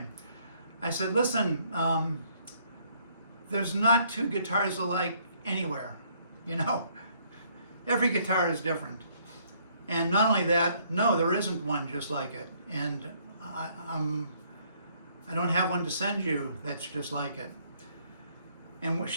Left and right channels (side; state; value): both; inverted; correlation -0.66